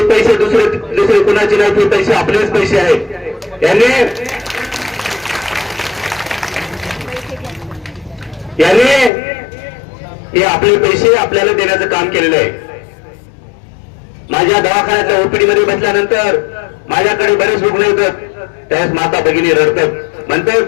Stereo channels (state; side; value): drops out; right; at 9.1 s